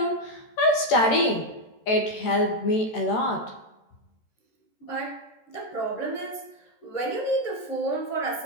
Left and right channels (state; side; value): late; right; 14 ms